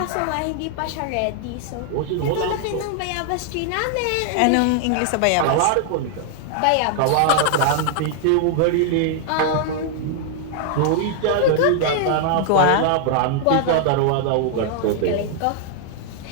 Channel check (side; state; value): both; different; correlation 0.00